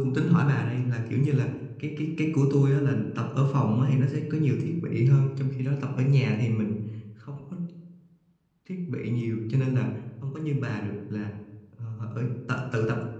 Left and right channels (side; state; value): both; identical; correlation 1.00